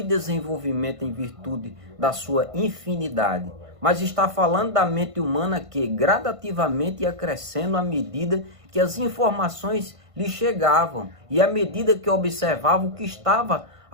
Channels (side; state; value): left; late; 1.5 ms